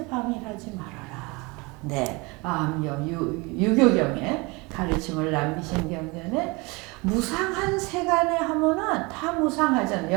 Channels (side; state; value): left; quieter; 26.3 dB